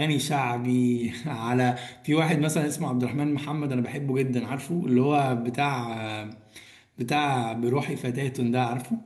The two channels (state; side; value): identical; both; correlation 1.00